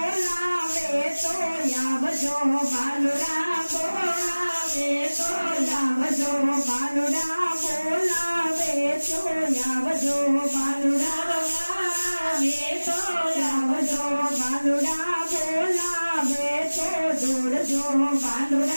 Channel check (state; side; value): inverted; both; correlation -1.00